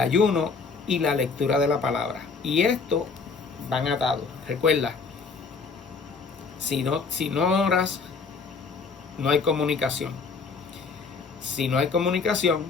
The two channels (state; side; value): quieter; right; 4.9 dB